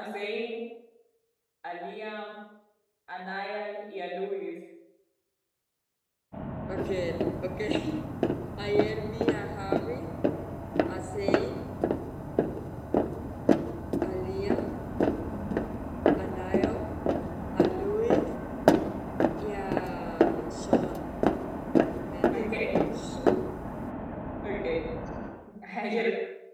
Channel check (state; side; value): identical; both; correlation 1.00